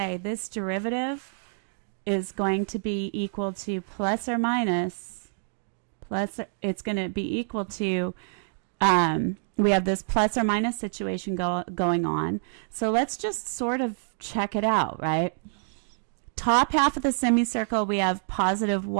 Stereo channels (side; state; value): left; silent; digital silence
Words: this derivative is going to be equal to plus or minus, it's going to be equal to, we have this plus or minus situation going on. So let's just sort of check it out, right? Top half of the semicircle, we have positive